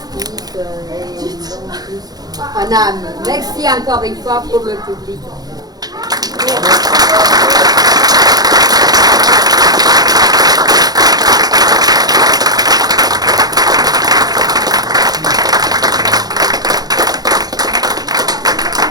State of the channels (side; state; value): left; late; 0.19 ms